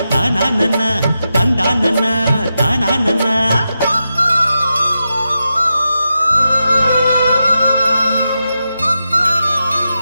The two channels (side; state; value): both; inverted; correlation -0.89